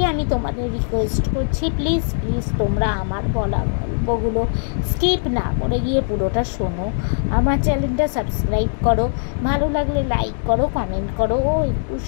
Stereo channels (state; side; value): silent; right; digital silence